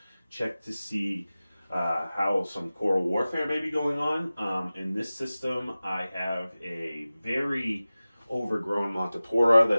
check to see how some coral warfare may be going on. In this system, I have a very overgrown Montipora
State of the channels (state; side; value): inverted; both; correlation -0.97